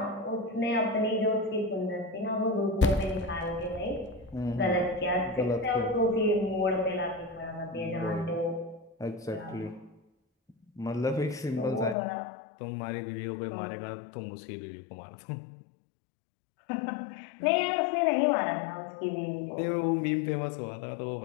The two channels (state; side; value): drops out; right; at 12.0 s